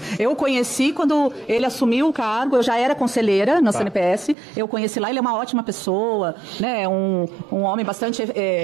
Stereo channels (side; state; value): left; drops out; at 4.4 s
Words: Eu conheci quando ele assumiu o cargo, eu já era conselheira na CNPS, eu conheci lá, ele é uma ótima pessoa, né, um homem bastante